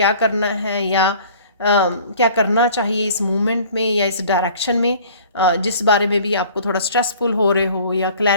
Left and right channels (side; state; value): both; inverted; correlation -0.49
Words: करना है या क्या करना चाहिए इस मूवमेंट में या इस डायरेक्शन में, जिस बारे में भी आपको थोड़ा स्ट्रेसफुल हो रहे हो या